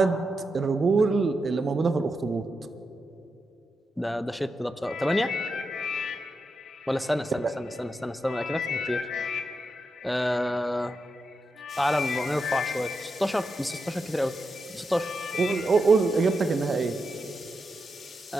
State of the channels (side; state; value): both; normal; correlation 0.86